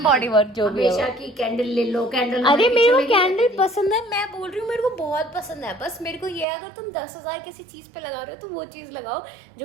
बॉडी वर्क जो भी है हमेशा की कैंडल ले लो, कैंडल। अरे मेरे को कैंडल पसंद है, मैं बोल रही हूँ मेरे को बहुत पसंद है। बस मेरे को ये है, अगर तुम 10,000 किसी चीज पे लगा रहे हो तो वो चीज लगाओ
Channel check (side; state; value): left; drops out; at 6.5 s